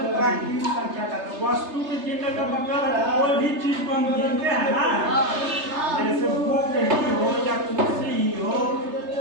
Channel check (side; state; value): left; late; 3.3 ms